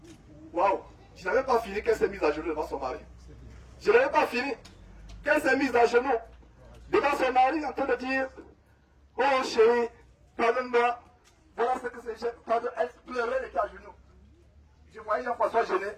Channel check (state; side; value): identical; both; correlation 1.00